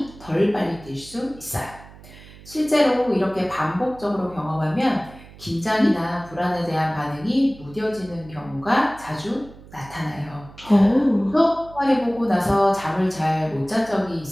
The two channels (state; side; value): noise; right; hum, 20 dB below the sound